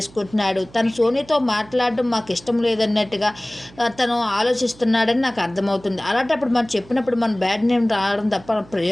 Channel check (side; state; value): right; noise; hum, 23 dB below the sound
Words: తను సోనీతో మాట్లాడడం మాకు ఇష్టం లేదన్నట్టుగా తను ఆలోచిస్తున్నాడని నాకు అర్థమవుతుంది. అలాంటప్పుడు మనం చెప్పినప్పుడు మన బ్యాడ్ నేమ్ రావడం తప్ప